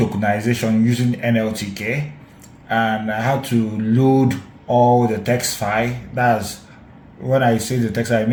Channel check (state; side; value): identical; both; correlation 1.00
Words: using NLTK, and I had to load all the text file. That's when I say the text, I